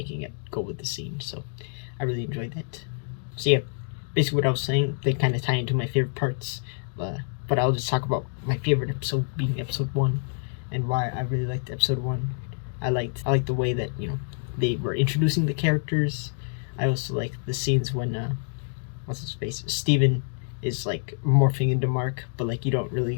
it go with the scene. So I really enjoyed that. So yeah, basically what I was saying, they kind of tie into my favorite parts, but I'll just talk about my favorite episode being episode 1, and why I really liked episode 1. I liked the way that they were introducing the characters. I also like the scenes when what's his face, Steven is like morphing into Mark, but like you don't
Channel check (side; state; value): right; silent; digital silence